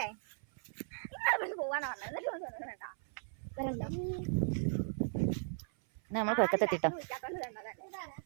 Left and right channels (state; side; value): silent; left; 53 dB below the other